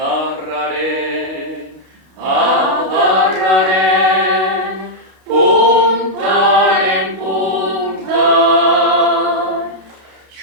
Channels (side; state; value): left; late; 32 ms